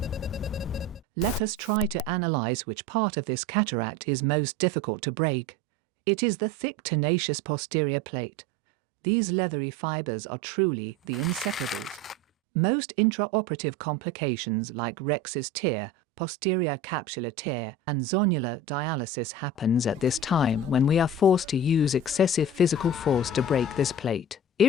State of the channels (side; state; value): both; normal; correlation 0.33